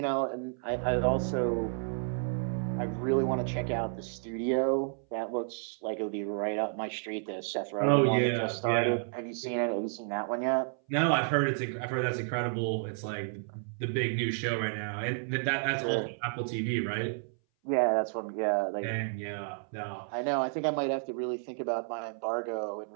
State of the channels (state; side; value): silent; left; 57 dB below the other